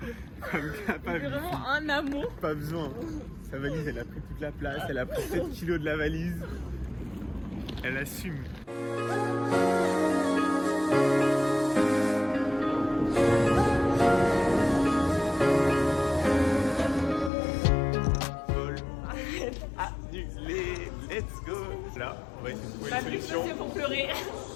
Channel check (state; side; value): drops out; right; at 17.3 s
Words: Femme C'est capable. vraiment un amour. Pas besoin. Sa valise, elle a pris toute la place. Elle a pris 7 kilos de la valise. Elle assume. Vol annulé. Let's go. Là, on va essayer de trouver Ma une plus solution. c'est pour pleurer.